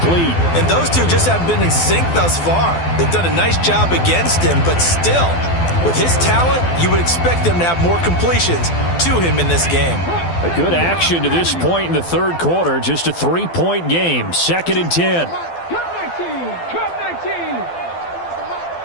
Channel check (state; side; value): late; right; 12 ms